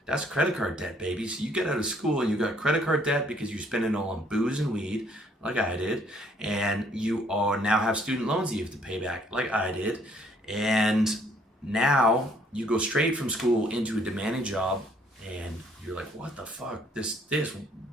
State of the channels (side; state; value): both; normal; correlation 0.63